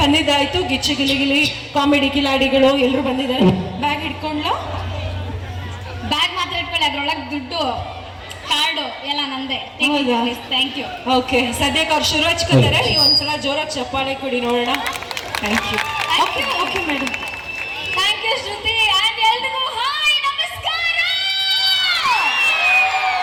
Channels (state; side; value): identical; both; correlation 1.00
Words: ಬಂದಿದ್ದಾಯ್ತು. ಗಿಚ್ಚಿ ಗಿಲಿ ಕಾಮಿಡಿ ಕಿಲಾಡಿಗಳು ಎಲ್ಲರೂ ಬಂದಿದ್ದಾರೆ. ಬ್ಯಾಗ್ ಇಟ್ಕೊಂಡ್ಲಾ? ಬ್ಯಾಗ್ ಮಾತ್ರ ಇಟ್ಕೊಳ್ಳಿ, ಅದ್ರೊಳಗೆ ದುಡ್ಡು ಕಾರ್ಡು ಎಲ್ಲ ನಂದೆ. ಹೌದಾ? Thank you. ಓಕೆ, ಸದ್ಯಕ್ಕೆ ಅವ್ರು ಶುರು ಹಚ್ಕೋತಾರೆ. ನೀವು ಒಂದ್ಸಲ ಜೋರಾಗಿ ಚಪ್ಪಾಳೆ ಕೊಡಿ ನೋಡೋಣ. Thank you. Okay okay madam, thank you Shruti. And ಎಲ್ರಿಗೂ ಹಾಯ್, ನಮಸ್ಕಾರ.